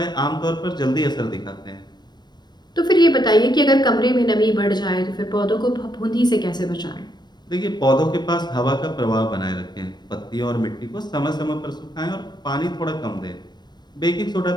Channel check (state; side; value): late; right; 0.21 ms